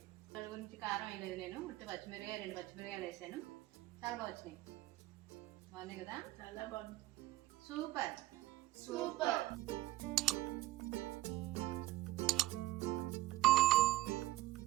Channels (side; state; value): left; quieter; 17.2 dB